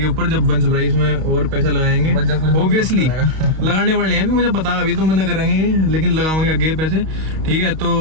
ऊपर जब वंश भाई इसमें और पैसे लगाएंगे, ऑब्वियसली लगाने वाले हैं, अभी मुझे पता है, अभी तो मना करेंगे लेकिन लगाएंगे आगे पैसे। ठीक है, तो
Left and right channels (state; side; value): late; left; 32 ms